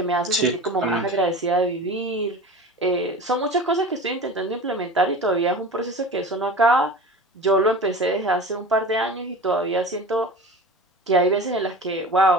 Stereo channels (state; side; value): normal; both; correlation 0.35